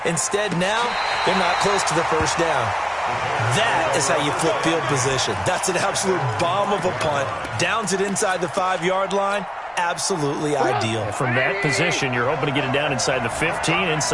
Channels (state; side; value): identical; both; correlation 1.00